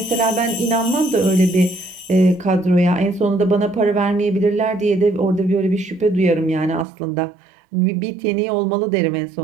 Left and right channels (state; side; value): drops out; left; at 6.9 s